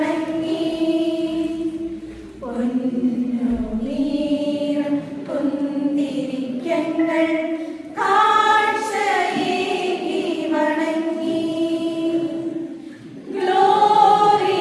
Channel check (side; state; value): both; identical; correlation 1.00